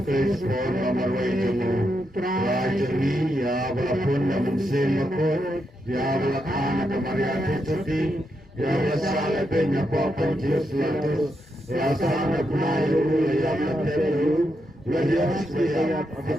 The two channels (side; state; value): both; normal; correlation 0.83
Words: Kristus nomor wajahmu Rajani ya walaupun namun semakot Ya walakana kemaria keseti Ya walasala penya papan Yesus latus Ya sana kunayu ya matelu Ya Yesus kaya